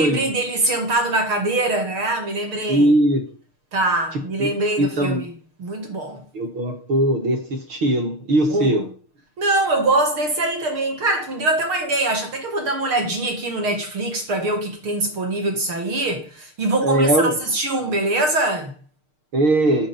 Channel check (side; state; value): left; late; 6.6 ms